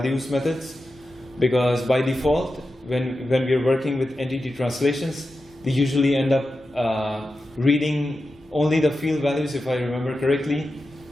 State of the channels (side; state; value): both; normal; correlation 0.91